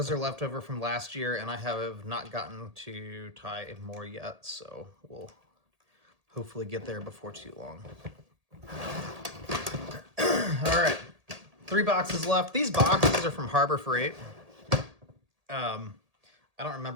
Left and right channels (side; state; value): left; late; 1.8 ms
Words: are left over from last year, and I have not gotten to tie more yet. So we'll hopefully get there before too long. All right, 3 boxes left. These boxes are from Harbor Freight. I don't